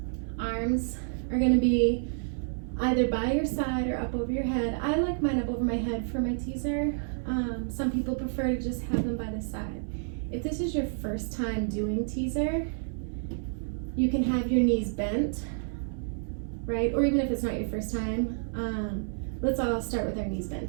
Arms are going to be either by your side or up over your head. I like mine up over my head for my teaser. Some people prefer to just have them by the side. If this is your first time doing teaser, you can have your knees bent, right? Or even if it's not your first time, let's all start with our knees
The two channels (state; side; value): silent; left; 58 dB below the other